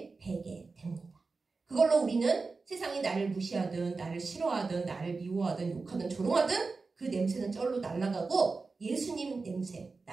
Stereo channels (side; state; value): left; quieter; 4.1 dB